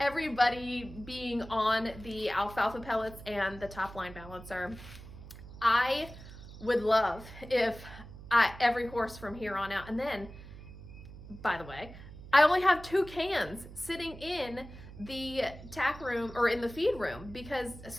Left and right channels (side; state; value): right; noise; hum, 15 dB below the sound